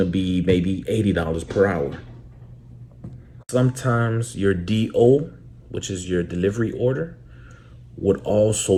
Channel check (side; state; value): both; identical; correlation 1.00